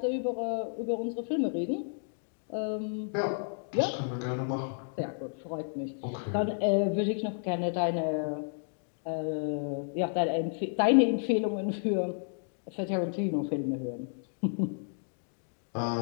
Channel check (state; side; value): silent; right; digital silence